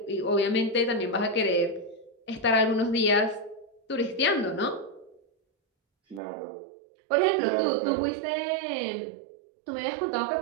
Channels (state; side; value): drops out; left; at 6.2 s